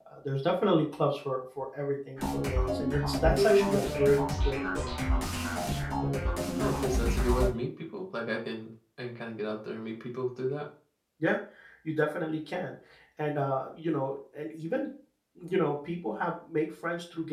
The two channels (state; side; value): identical; both; correlation 1.00